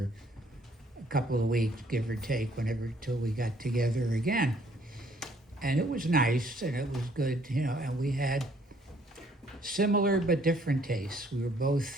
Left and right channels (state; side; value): normal; both; correlation 0.63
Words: a couple of weeks, give or take, till we got together again. And it was nice and it was good, and we had similar but different tastes. We were